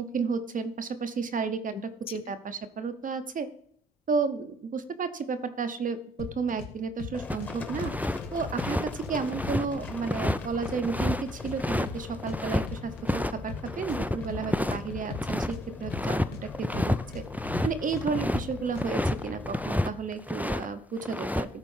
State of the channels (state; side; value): normal; both; correlation 0.66